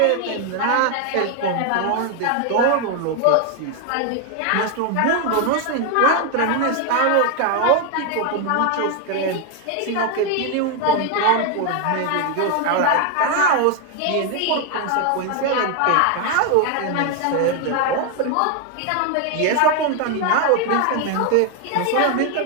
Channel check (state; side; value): different; both; correlation 0.01